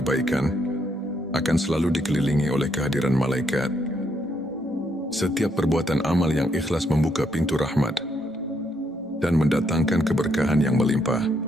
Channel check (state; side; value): normal; both; correlation 0.74